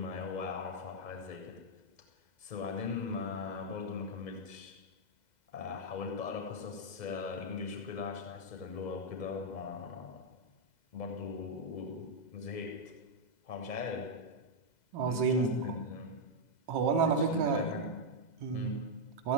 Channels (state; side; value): late; right; 2.0 ms